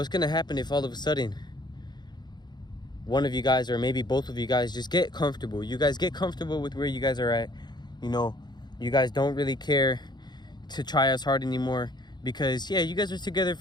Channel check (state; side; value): late; right; 0.21 ms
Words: gonna happen if all of a sudden one of you guys, or maybe both of you guys, just get comfortable? You guys get comfortable with where you guys are at. You know, you guys don't really care to try as hard anymore because, yeah, you guys are together.